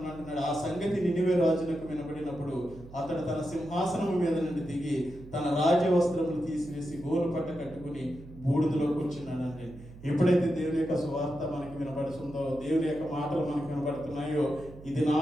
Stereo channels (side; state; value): right; noise; hum, 17 dB below the sound